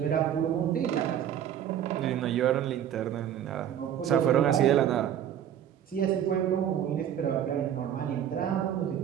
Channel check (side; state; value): left; quieter; 10.0 dB